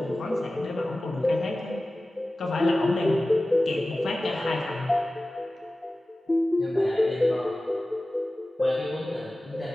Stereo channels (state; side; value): normal; both; correlation 0.96